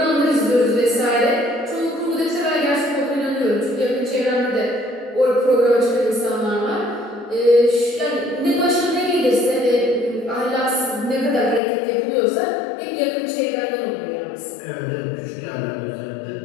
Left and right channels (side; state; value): right; drops out; at 11.6 s